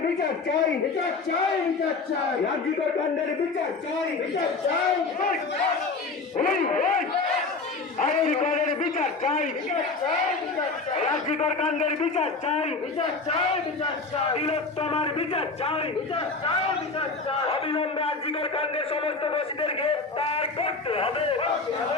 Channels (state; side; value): quieter; right; 4.0 dB